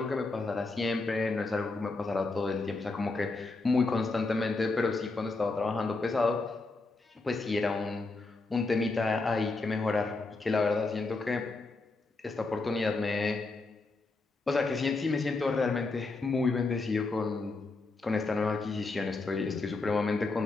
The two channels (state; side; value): quieter; right; 3.5 dB